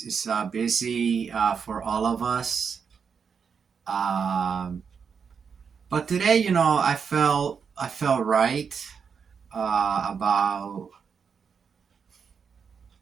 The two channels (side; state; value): left; quieter; 6.3 dB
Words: busy for all of us. Um, but today, I felt right about